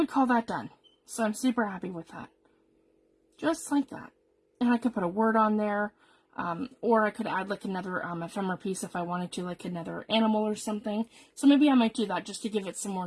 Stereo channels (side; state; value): both; identical; correlation 1.00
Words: call that done. So I'm super happy with that. Just like that. And I could put a word on there. Or I could add like another ephemera piece if I wanted to, like another animal or something. So maybe I might do that just to give it some